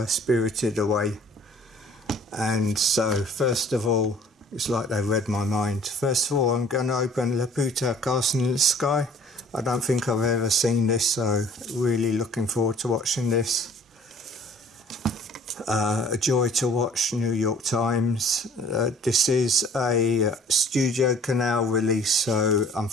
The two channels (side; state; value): both; normal; correlation 0.53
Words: Spirited Away. And so first of all, it's like they read my mind. First of all, I'm going to open Laputa, Castle in the Sky. I don't think I've ever seen this, so really looking forward to watching this. A joy to watch, New York Times. This is a Studio Canal release, so